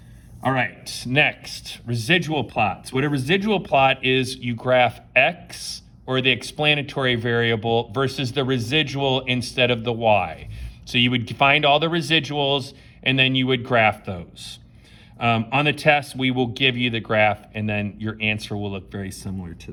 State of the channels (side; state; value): both; identical; correlation 1.00